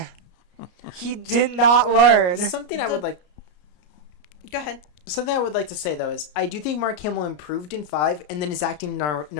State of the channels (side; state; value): right; late; 33 ms